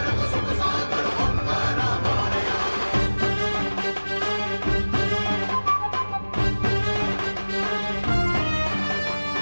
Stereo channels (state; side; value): inverted; both; correlation -1.00